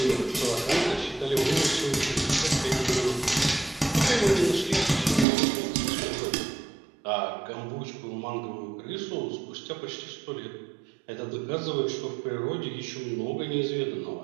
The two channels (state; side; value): drops out; left; at 5.2 s